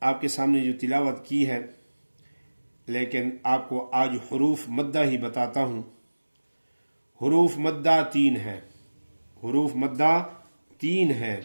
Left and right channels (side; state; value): both; inverted; correlation -1.00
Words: آپ کے سامنے جو تلاوت کی ہے، لیکن آپ کو آج حروف مدہ ہی بتاتا ہوں۔ حروف مدہ 3 ہیں، حروف مدہ 3 ہیں۔